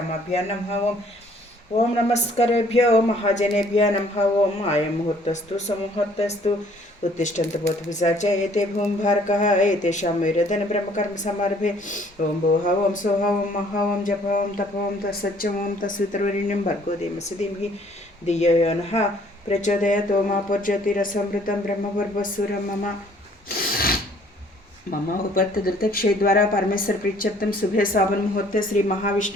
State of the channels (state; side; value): normal; both; correlation 0.59